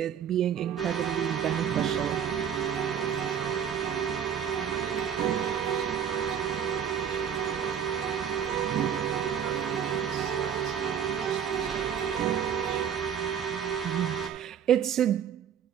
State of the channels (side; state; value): left; quieter; 8.2 dB